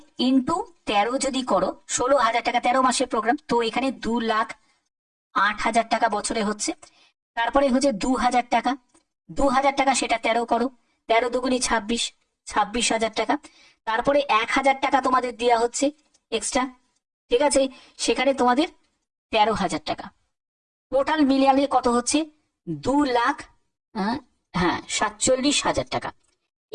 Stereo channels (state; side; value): identical; both; correlation 1.00